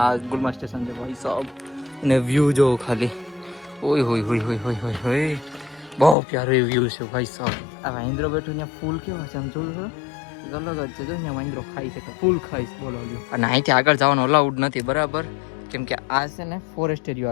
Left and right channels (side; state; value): right; drops out; at 6.2 s